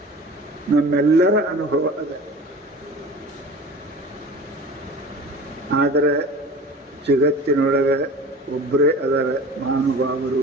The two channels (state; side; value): normal; both; correlation 0.39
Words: ನಮ್ಮೆಲ್ಲರ ಅನುಭವ ಅದ. ಆದರೆ ಜಗತ್ತಿನೊಳಗೆ ಒಬ್ಬರೇ ಅದರ